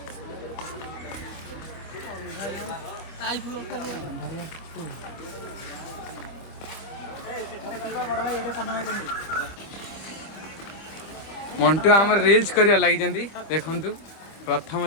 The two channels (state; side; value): late; right; 25 ms